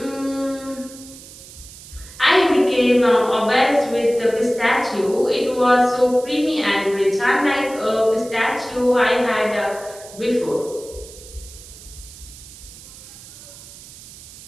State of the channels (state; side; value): noise; right; hiss, 18 dB below the sound